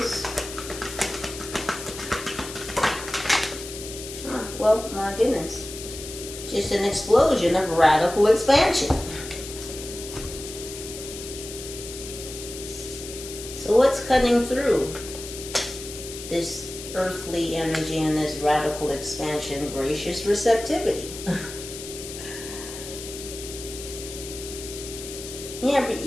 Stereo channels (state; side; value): noise; left; hiss, 11 dB below the sound